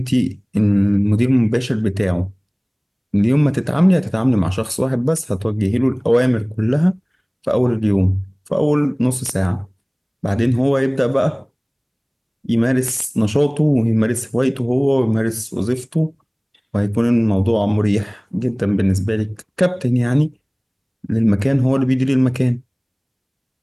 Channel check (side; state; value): both; identical; correlation 1.00